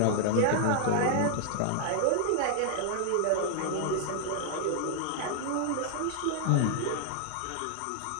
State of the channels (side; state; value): both; different; correlation 0.00